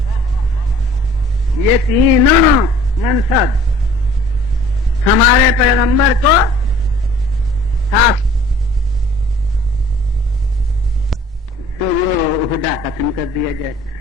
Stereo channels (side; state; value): both; normal; correlation 0.51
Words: یہ تینوں منصب ہمارے پیغمبر کو حاصل. تو وہ عہدہ ختم کر دیا جائے،